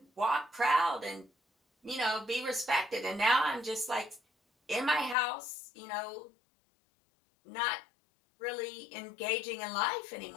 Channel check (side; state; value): right; drops out; at 5.2 s